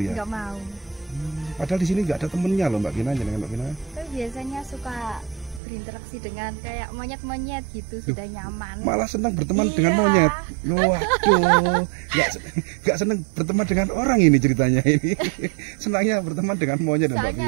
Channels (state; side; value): drops out; left; at 5.6 s